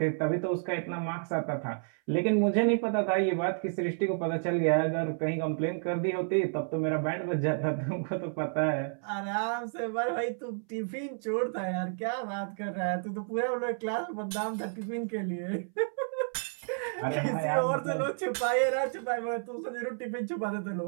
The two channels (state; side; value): silent; left; 57 dB below the other